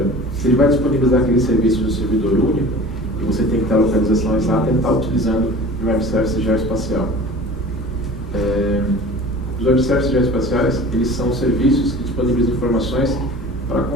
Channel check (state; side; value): normal; both; correlation 0.41